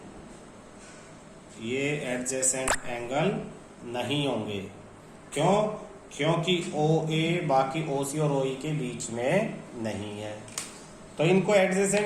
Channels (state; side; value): identical; both; correlation 1.00